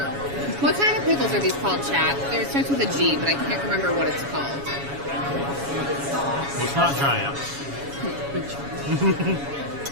What kind of pickles are these called, chat? It starts with a G, but I can't remember what it's called. Well, it's not giant.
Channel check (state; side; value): late; left; 7.2 ms